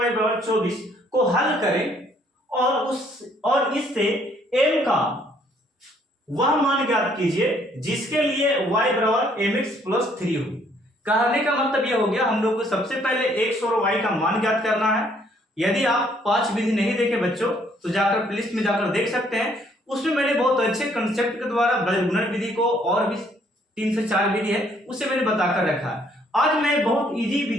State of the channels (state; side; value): normal; both; correlation 0.65